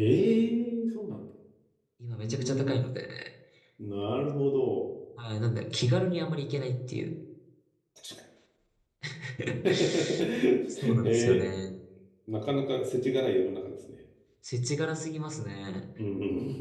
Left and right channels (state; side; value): identical; both; correlation 1.00